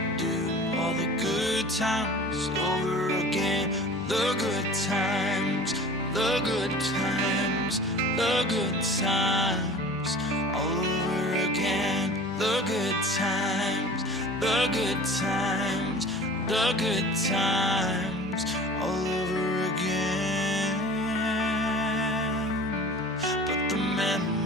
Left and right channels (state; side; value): normal; both; correlation 0.41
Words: do all the good times over again. The good times, the good times, the good times, all over again. The good times, the good times, the good times, all over again. But the